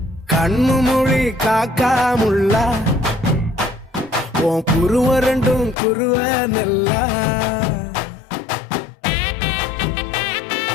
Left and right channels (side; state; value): right; drops out; at 5.8 s